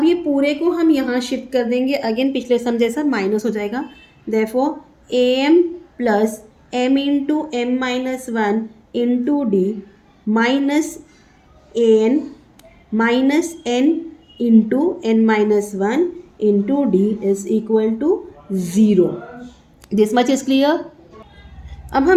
ये पूरे को हम यहाँ शिफ्ट कर देंगे, अगेन पिछले सम जैसा माइनस हो जाएगा, therefore a m plus m into m minus 1 into d minus a n minus n into n minus 1 into D is equal to 0। This much is clear. अब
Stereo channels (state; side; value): identical; both; correlation 1.00